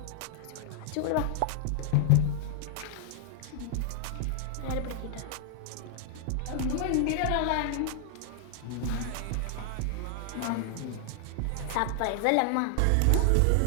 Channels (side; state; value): both; different; correlation 0.00